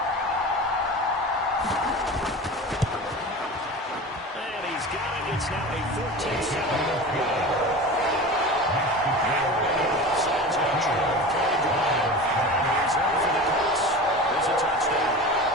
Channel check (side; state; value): both; normal; correlation 0.32